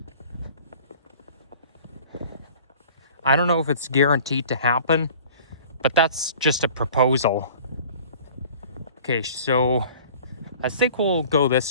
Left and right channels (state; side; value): inverted; both; correlation -0.46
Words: I don't know if it's guaranteed to happen, but that's just a proposal. Okay, so I think we'll go